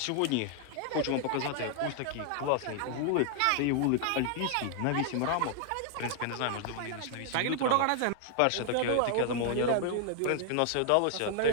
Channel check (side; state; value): both; different; correlation 0.00